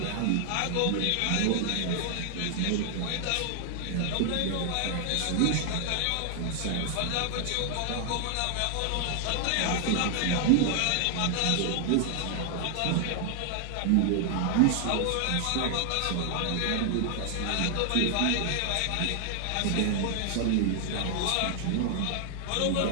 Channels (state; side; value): different; both; correlation 0.00